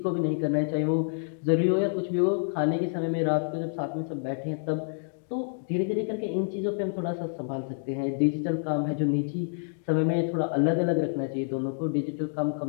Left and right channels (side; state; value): right; silent; digital silence